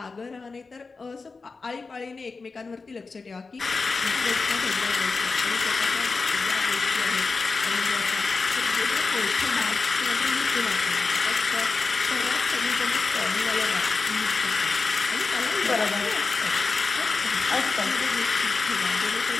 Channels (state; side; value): quieter; right; 4.2 dB